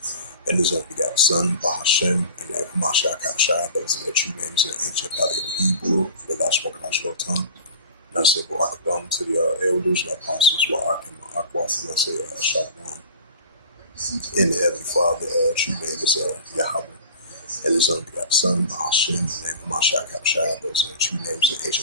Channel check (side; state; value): both; inverted; correlation -0.39